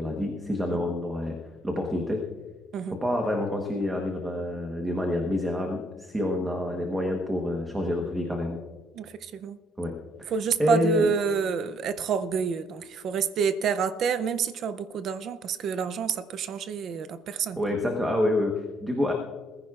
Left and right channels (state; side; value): normal; both; correlation 0.69